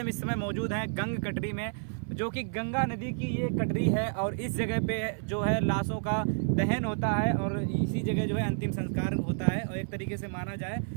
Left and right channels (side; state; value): left; silent; 58 dB below the other